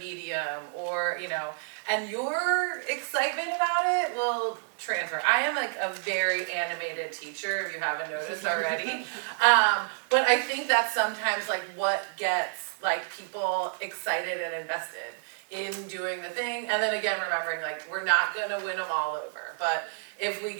or and your excitement about it will transfer. I am like a very animated teacher if you haven't noticed already. But I think that's sometimes like what gets like people excited and invested in doing the thing, and then again remembering like we're not gonna win them all over, but if we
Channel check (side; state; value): left; silent; 58 dB below the other